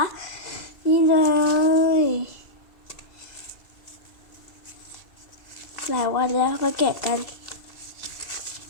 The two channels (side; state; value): right; late; 2.0 ms